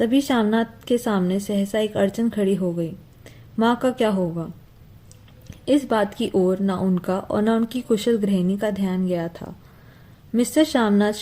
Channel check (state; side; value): identical; both; correlation 1.00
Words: श्यामनाथ के सामने सहसा एक अड़चन खड़ी हो गई। माँ का क्या होगा? इस बात की ओर न उनका और न उनकी कुशल गृहिणी का ध्यान गया था। मिस्टर श्यामनाथ